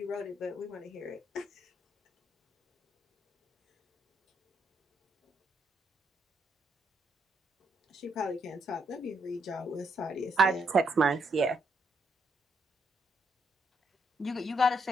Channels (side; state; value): both; normal; correlation 0.76